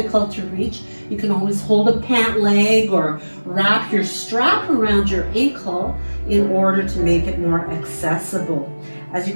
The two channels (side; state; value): both; inverted; correlation -1.00